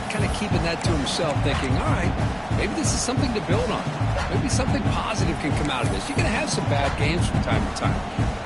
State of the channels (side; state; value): both; identical; correlation 1.00